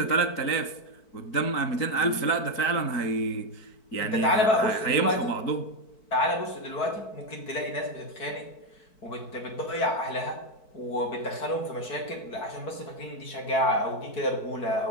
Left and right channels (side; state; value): right; late; 4.5 ms